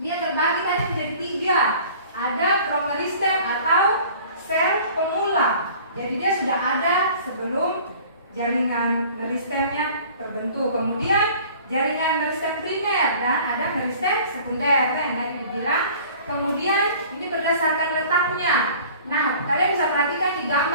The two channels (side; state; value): both; inverted; correlation -0.47